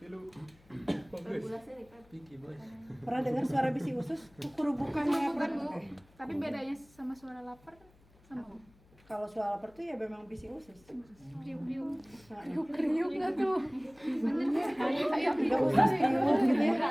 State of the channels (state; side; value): noise; left; hum, 29 dB below the sound